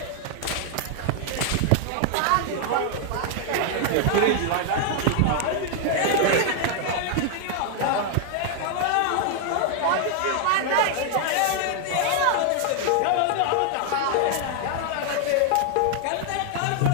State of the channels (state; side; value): different; both; correlation 0.00